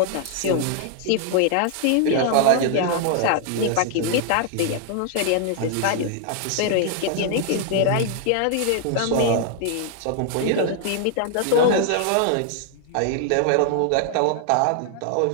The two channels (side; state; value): both; different; correlation 0.00